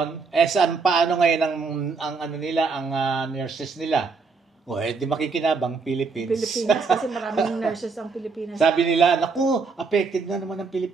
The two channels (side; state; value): left; quieter; 4.6 dB